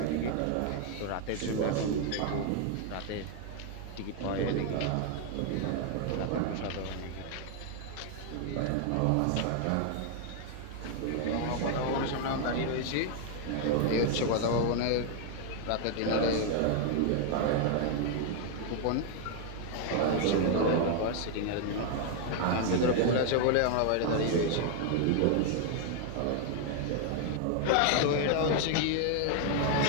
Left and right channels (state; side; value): different; both; correlation 0.00